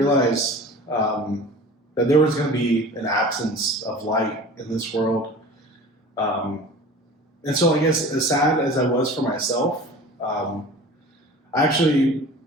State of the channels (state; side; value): normal; both; correlation 0.40